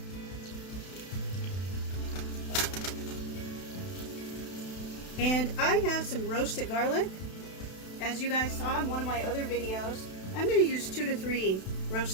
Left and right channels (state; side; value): late; right; 32 ms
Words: And I have some roasted garlic. As you guys saw in one of my other videos, I'm going to use 2 to 3